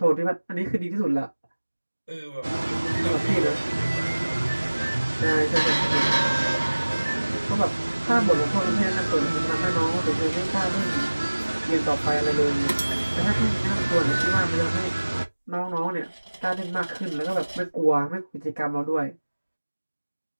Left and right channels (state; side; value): inverted; both; correlation -1.00